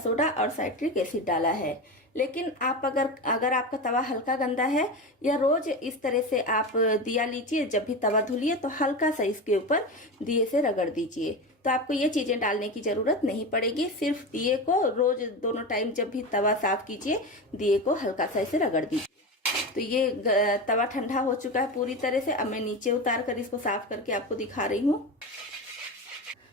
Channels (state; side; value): normal; both; correlation 0.23